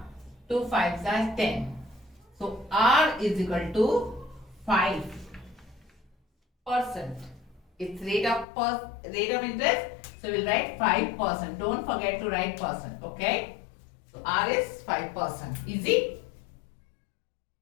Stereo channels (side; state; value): right; drops out; at 8.5 s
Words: 2 fives are 10. So, R is equal to 5%. It's rate of interest. So, we'll write 5%. Don't forget to write percent. Okay. So, R is 5%. Easy?